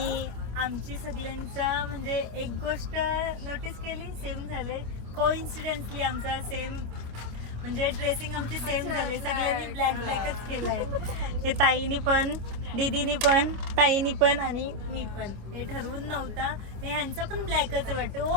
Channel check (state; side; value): late; left; 26 ms